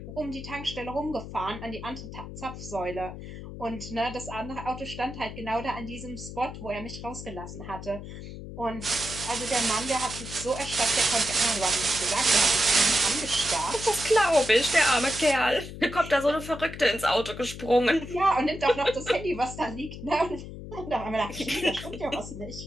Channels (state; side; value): noise; left; hum, 11 dB below the sound